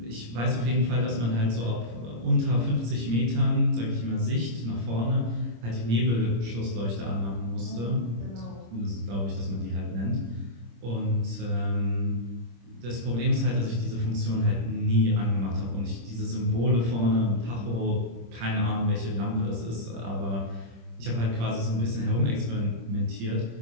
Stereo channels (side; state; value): left; late; 26 ms